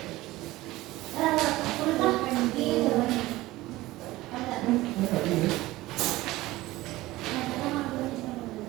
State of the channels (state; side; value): quieter; left; 18.1 dB